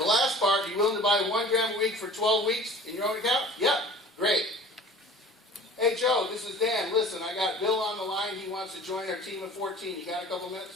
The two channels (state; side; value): normal; both; correlation 0.44